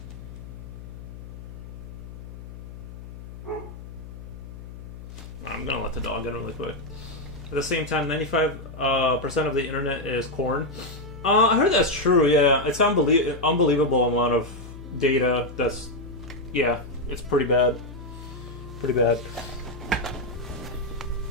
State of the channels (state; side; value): noise; left; hum, 13 dB below the sound